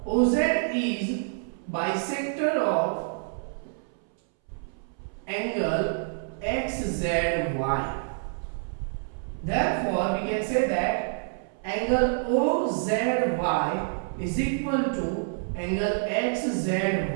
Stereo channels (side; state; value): left; silent; 60 dB below the other